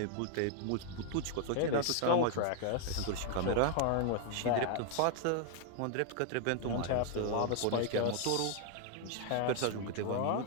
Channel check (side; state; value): both; different; correlation 0.00